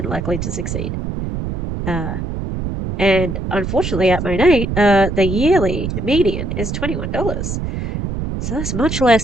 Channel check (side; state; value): right; noise; rumble, 4 dB below the sound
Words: likely to succeed. And unfortunately at MONAT, the yearly median is $21. So that's much